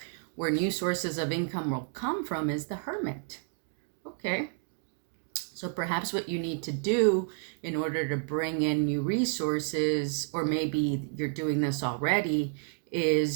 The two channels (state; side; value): silent; left; 57 dB below the other